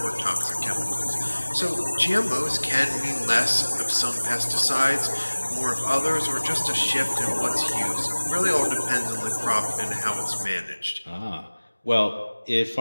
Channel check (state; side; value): inverted; both; correlation -1.00